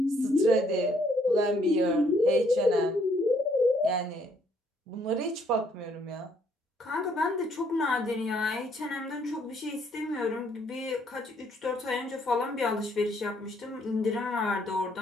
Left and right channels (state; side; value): normal; both; correlation 0.68